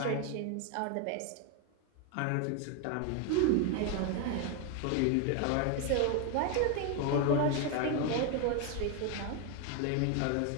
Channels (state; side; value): different; both; correlation 0.01